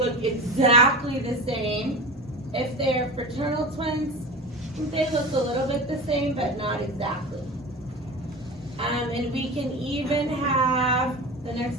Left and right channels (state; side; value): normal; both; correlation 0.29